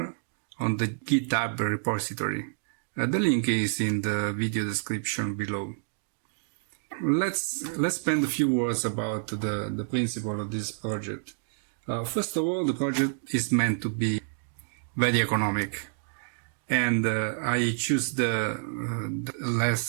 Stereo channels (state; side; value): silent; left; digital silence